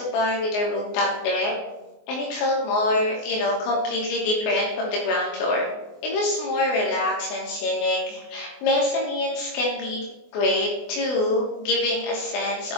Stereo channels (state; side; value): late; right; 24 ms